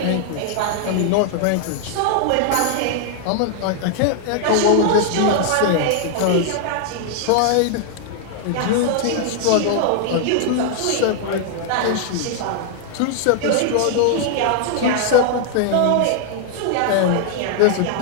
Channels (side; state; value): both; different; correlation 0.00